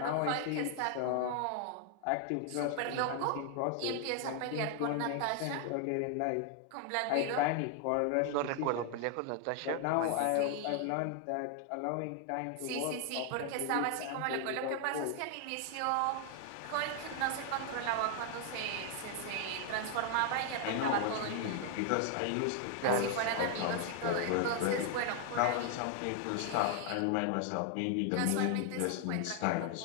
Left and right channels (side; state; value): both; different; correlation 0.00